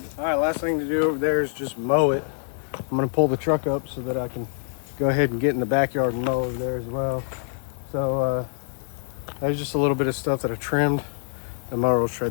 All right, last thing to do over there is just mow it. I'm gonna pull the truck up so that I can go ahead and get in the backyard and mow over there as well. So there's just a little bit of stuff that I trimmed. The mower will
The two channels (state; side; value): silent; right; 62 dB below the other